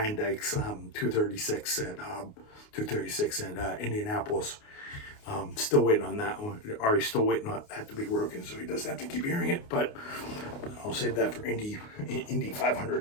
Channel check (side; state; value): right; late; 29 ms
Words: 236 at Indianapolis. Still waiting on that one. Ari's still waiting on that to be broken, so he doesn't have to keep hearing it. But I'll save that for Indy